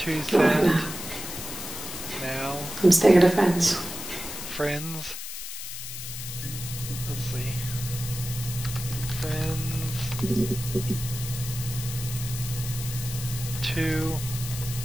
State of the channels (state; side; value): noise; left; hiss, 8 dB below the sound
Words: Not right sad. now. Now. I'm staying at a friend's. Friends. Let's see. Friends. Too